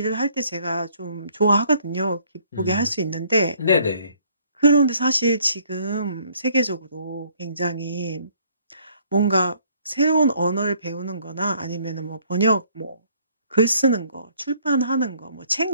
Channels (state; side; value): inverted; both; correlation -0.62